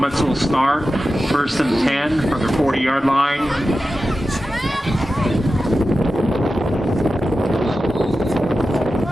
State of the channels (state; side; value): normal; both; correlation 0.93